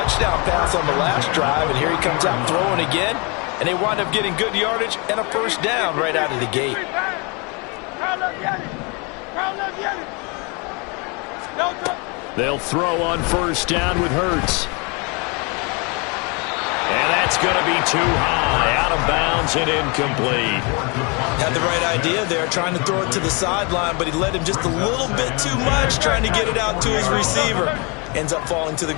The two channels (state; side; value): quieter; right; 31.2 dB